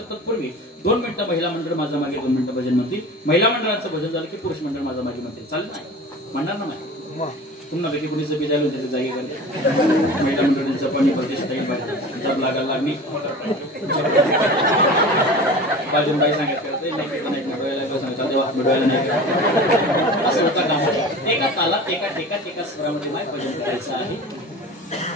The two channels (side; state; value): both; normal; correlation 0.36